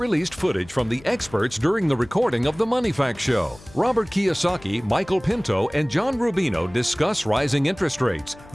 footage from the experts during the recording of the Money Facts Show. Robert Kiyosaki, Michael Pento, and John Rubino discuss rising interest rates,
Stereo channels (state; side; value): noise; left; hum, 22 dB below the sound